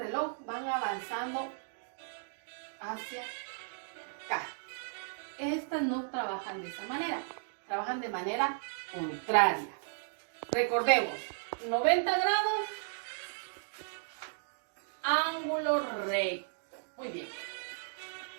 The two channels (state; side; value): silent; left; digital silence